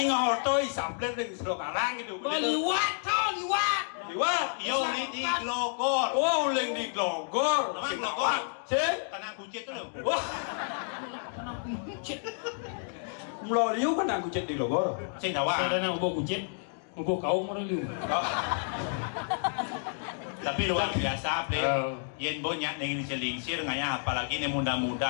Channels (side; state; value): right; silent; digital silence